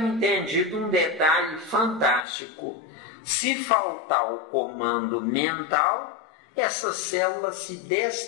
um detalhe fantástico. Se faltar o comando mental, essa célula se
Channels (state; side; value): drops out; right; at 2.2 s